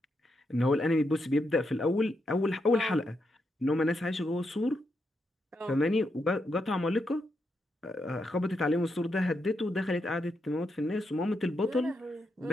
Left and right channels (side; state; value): both; normal; correlation 0.82